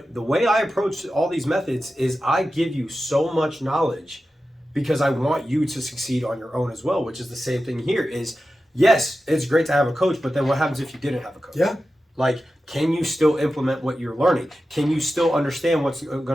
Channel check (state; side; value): normal; both; correlation 0.92